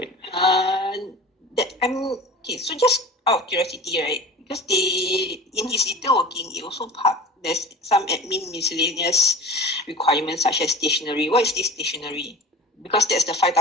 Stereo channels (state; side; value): normal; both; correlation 0.36